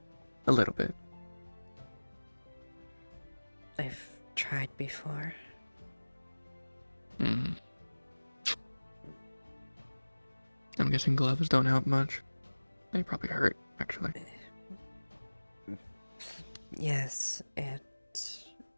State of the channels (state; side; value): inverted; both; correlation -1.00